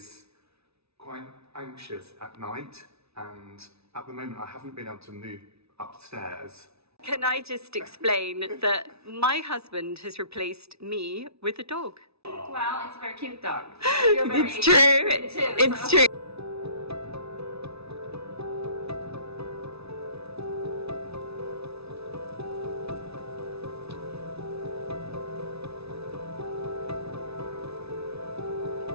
quite anxious at night, and at the moment I haven't been able to move upstairs. Can I just explain that my husband has replaced me with a dog? Well, it's a very cute dog. It's true. It's true.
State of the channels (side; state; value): left; late; 0.79 ms